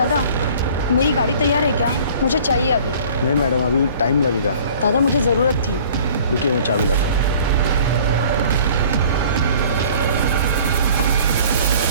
मेरी गाड़ी तैयार है क्या? मुझे चाहिए अभी। नहीं मैडम, अभी टाइम लगेगा। दादा, मुझे ज़रूरत थी। रुकिए, मैं चाबी लाता हूँ।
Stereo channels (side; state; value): both; inverted; correlation -0.50